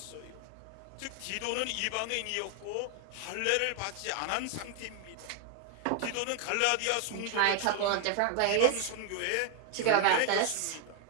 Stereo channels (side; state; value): both; different; correlation 0.00